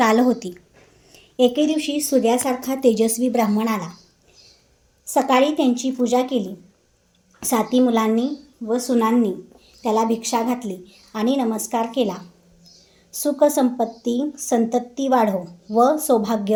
होती. एके दिवशी सूर्यासारखा तेजस्वी ब्राह्मण आला. सकाळी त्यांची पूजा केली. 7 मुलांनी व सुनांनी त्याला भिक्षा घातली आणि नमस्कार केला. सुख संपत्ती संतती वाढो व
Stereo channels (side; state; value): both; identical; correlation 1.00